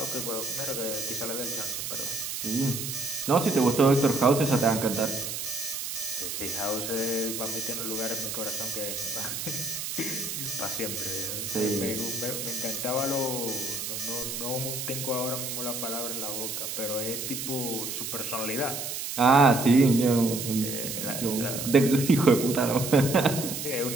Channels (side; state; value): right; noise; hiss, 5 dB below the sound